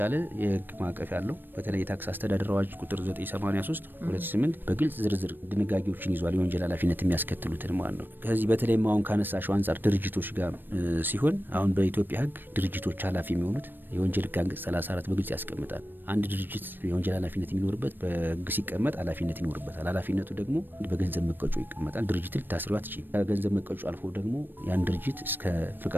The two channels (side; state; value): left; late; 0.094 ms